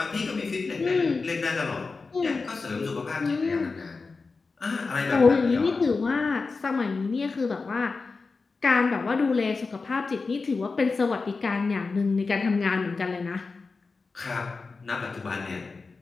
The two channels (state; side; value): quieter; right; 4.2 dB